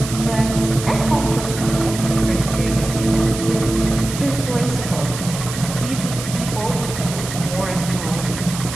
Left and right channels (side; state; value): right; noise; hiss, 9 dB below the sound